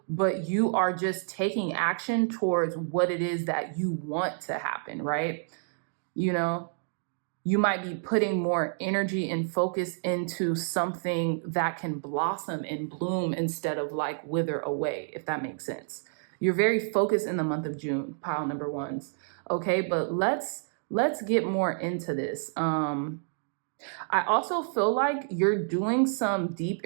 but you are just taking action towards what it is that you want to happen, right? You know, you might be putting more energy and focus into something that can blossom and bloom instead of like wither away, if that makes sense. You're very focused in the month of June, pile number ones. Okay, but let's get more into this. I also feel like you're doing some deep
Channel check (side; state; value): left; silent; digital silence